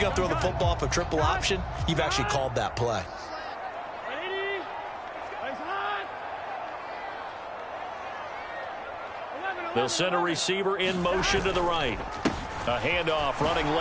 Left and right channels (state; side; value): identical; both; correlation 1.00